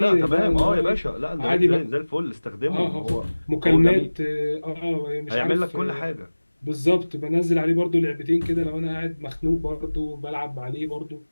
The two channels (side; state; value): both; inverted; correlation -1.00